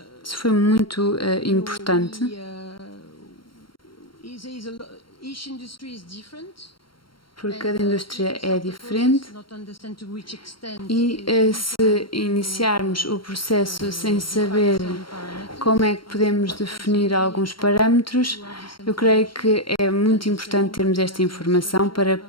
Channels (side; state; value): right; late; 0.73 ms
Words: Isso foi muito importante. Porque cada indústria é diferente e se iniciarmos o processo sem saber como é que podemos definir alguns parâmetros, eu creio que é muito importante termos esta informação para